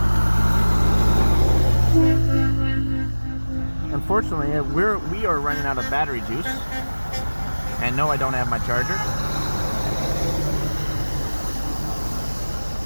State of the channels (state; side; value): inverted; both; correlation -1.00